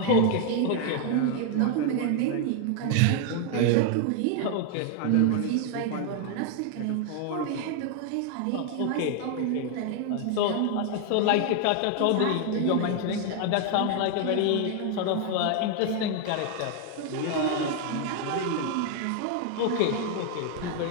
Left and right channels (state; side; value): different; both; correlation 0.00